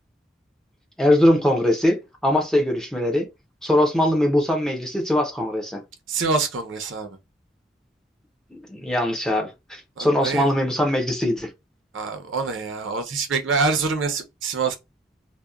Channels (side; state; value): both; normal; correlation 0.69